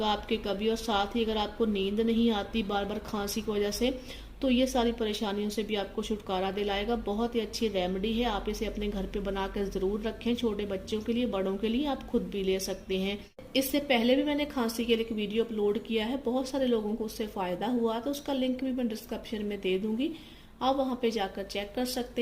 आपके कभी। और साथ ही अगर आपको नींद नहीं आती बार बार खांसी की वजह से तो ये सारी परेशानियों से भी आपको छुटकारा दिलाएगा। बहुत ही अच्छी रेमेडी है, आप इसे अपने घर पे बनाकर ज़रूर रखें। छोटे बच्चों के लिए, बड़ों के लिए आप खुद भी ले सकते हैं। इससे पहले भी मैंने खांसी के लिए एक वीडियो अपलोड किया है, बहुत सारे लोगों को उससे फ़ायदा हुआ, तो उसका लिंक भी मैं डिस्क्रिप्शन में दे दूँगी, आप वहाँ पे जाकर चेक कर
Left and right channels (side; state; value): both; identical; correlation 1.00